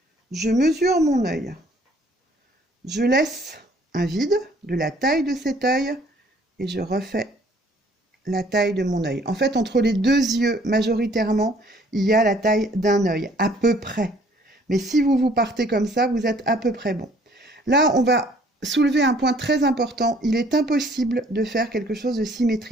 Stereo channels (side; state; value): both; normal; correlation 0.59